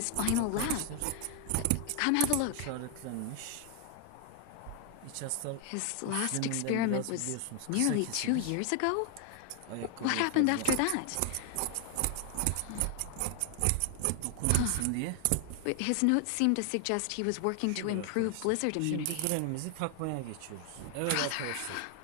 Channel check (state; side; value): different; both; correlation 0.00